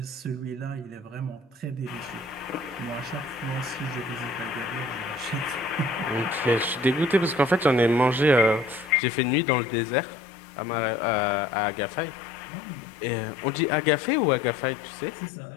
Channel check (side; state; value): right; drops out; at 9.0 s